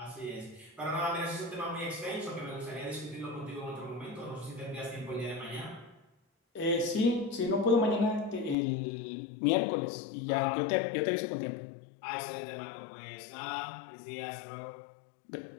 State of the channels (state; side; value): drops out; right; at 8.6 s